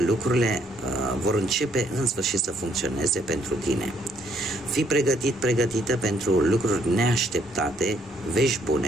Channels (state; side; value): normal; both; correlation 0.68